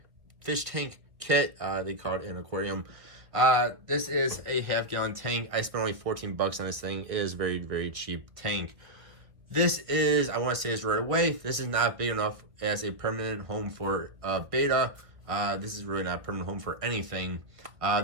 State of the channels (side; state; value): left; late; 1.8 ms